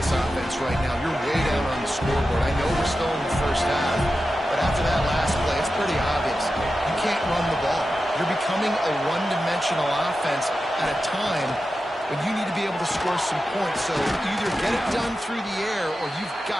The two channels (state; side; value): normal; both; correlation 0.92